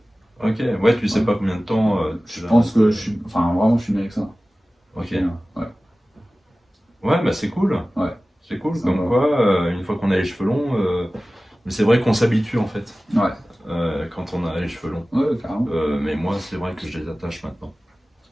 Ok, ouais, tu sais Ouais. pas combien de temps. Je pense que je suis. Enfin, vraiment, je suis bien avec ça. Ok. Ouais. Ouais, bah c'est cool. Ouais. C'est cool, Ça comme va. quoi, une fois qu'on a les cheveux longs, mais c'est vrai qu'on s'habitue en fait, Ouais. quand on a les cheveux longs. Ouais, carrément. Mais moi, c'est vrai que je les attache maintenant.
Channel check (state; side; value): normal; both; correlation 0.97